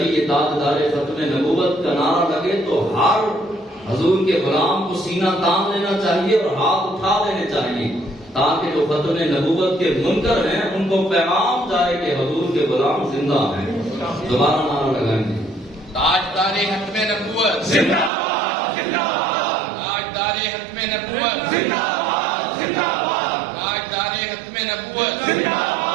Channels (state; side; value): drops out; left; at 18.1 s